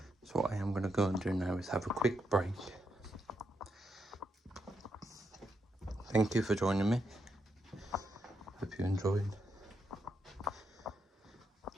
So what I am going to go and do now is have a quick break. Thank you for joining me. Hope you enjoyed.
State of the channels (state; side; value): normal; both; correlation 0.82